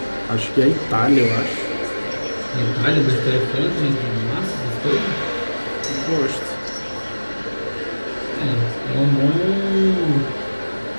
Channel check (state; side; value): inverted; both; correlation -1.00